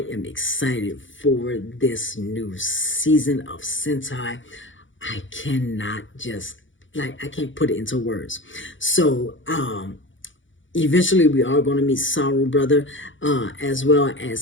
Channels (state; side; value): late; right; 0.56 ms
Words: am excited for this new season of Sentai, I cannot just, like, I can't put it into words. So, eventually we are going to meet Saru Brother, as well